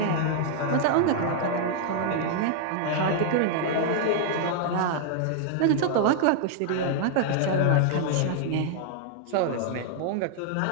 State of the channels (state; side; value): different; both; correlation 0.00